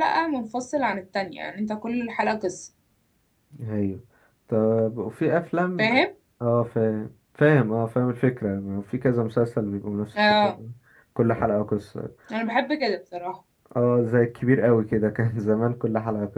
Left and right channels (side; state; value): both; identical; correlation 1.00